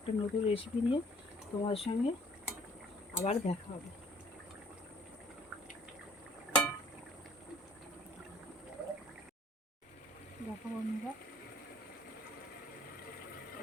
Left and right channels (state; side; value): normal; both; correlation 0.57